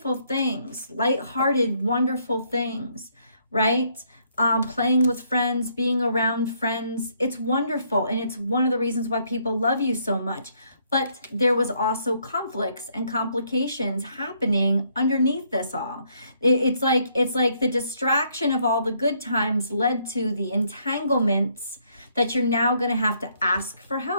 things, lighthearted, wonderful things, right? Playing with friends, being around friends. It's wonderful. And it's one of the reasons why people love you so much. But there was also conflicts and complications happening underneath this all. It's like the distraction of all the good times led to the entanglements that you're now going to have to ask for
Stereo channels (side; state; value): both; inverted; correlation -0.70